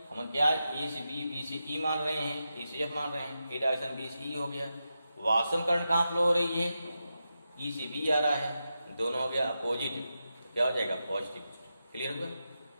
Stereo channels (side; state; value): both; inverted; correlation -0.89